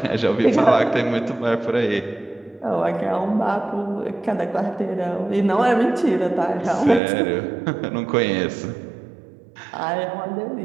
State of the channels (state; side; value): drops out; left; at 7.0 s